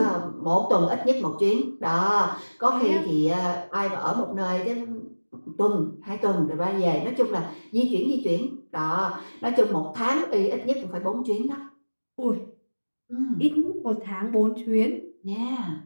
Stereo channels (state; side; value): inverted; both; correlation -1.00